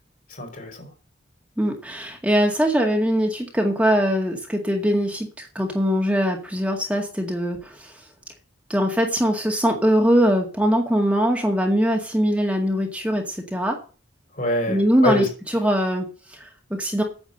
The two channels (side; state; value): both; normal; correlation 0.79